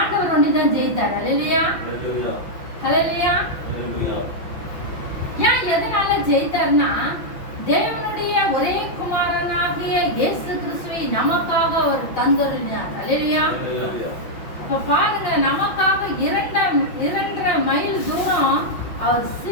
ஒன்றிதான் ஜெயித்தார். ஹல்லேலூயா. ஹல்லேலூயா. ஏன் எதனால ஜெயித்தார்னா, தேவனுடைய ஒரே குமாரனாகிய இயேசு கிறிஸ்துவை நமக்காக அவர் தந்தருளினார். ஹல்லேலூயா. அப்ப பாருங்க, நமக்காக 2.5 மைல் தூரம் அவர்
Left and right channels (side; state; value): right; late; 5.9 ms